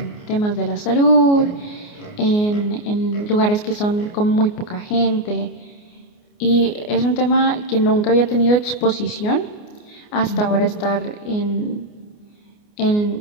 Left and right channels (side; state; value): right; late; 29 ms